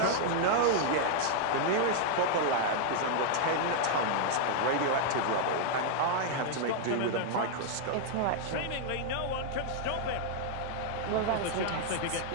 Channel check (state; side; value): different; both; correlation 0.00